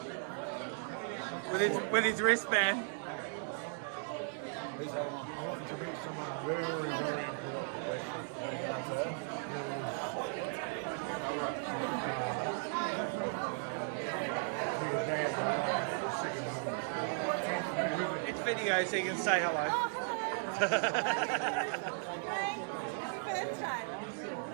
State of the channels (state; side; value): silent; left; 54 dB below the other